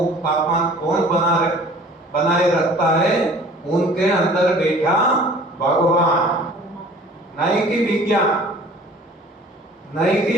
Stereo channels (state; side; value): normal; both; correlation 0.48